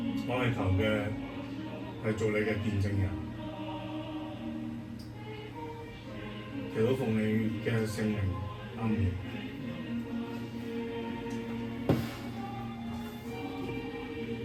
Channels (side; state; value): both; identical; correlation 1.00